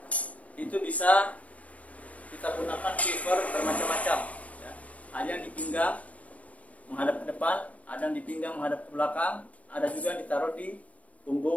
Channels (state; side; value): late; right; 0.067 ms